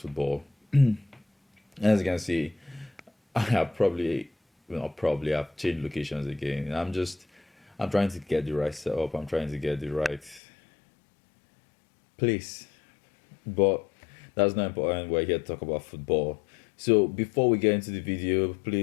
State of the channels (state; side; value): drops out; right; at 10.4 s